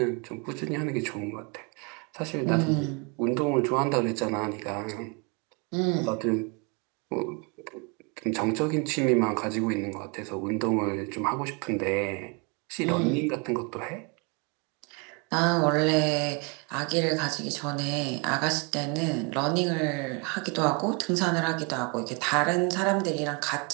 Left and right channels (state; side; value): quieter; left; 32.4 dB